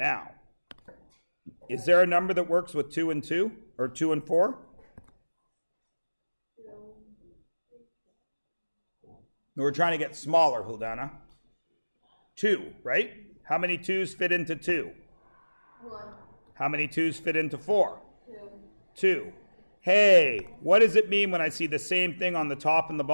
is there a number that works with 2 and 2? Or 2 and 4? We're trying to get smaller, Huldana. 2, right? How many 2's fit into 2? 1. How many 2's fit into 4? 2. 2. Hey, what does it mean when I see the same thing on the top and the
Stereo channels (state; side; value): inverted; both; correlation -1.00